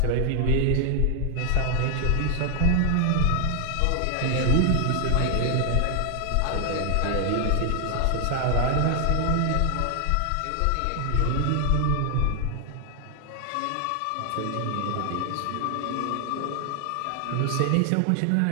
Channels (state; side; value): different; both; correlation 0.00